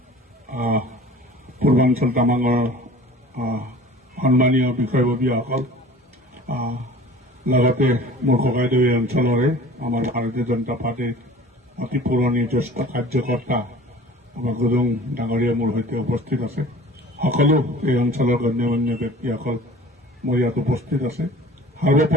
পূৰ্বাঞ্চল তামাঙৰ সন্মানীয় বিষয়ববীয়াসকল লগতে মোৰ ককাইদেউ এই অঞ্চলৰে আমাৰ ভাৰতীয় জনতা পাৰ্টীৰ অতি পুৰণি জ্যেষ্ঠ কাৰ্যকৰ্তা আমাৰ গুৰুং ডাঙৰীয়া মোৰ সৈতে উপস্থিত আছে। সকলো এই অঞ্চলৰ গণ্যমান্য ব্যক্তিসকল মোৰ ইয়াত উপস্থিত আছে।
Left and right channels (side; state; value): both; normal; correlation 0.44